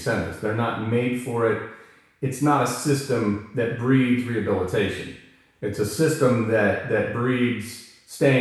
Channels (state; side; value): identical; both; correlation 1.00